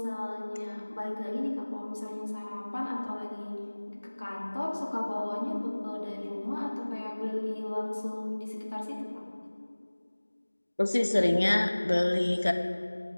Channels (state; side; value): inverted; both; correlation -1.00